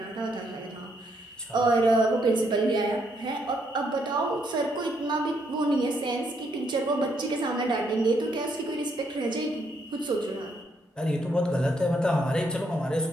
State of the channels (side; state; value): both; normal; correlation 0.74